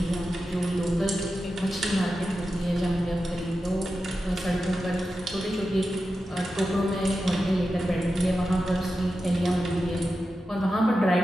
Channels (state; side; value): normal; both; correlation 0.91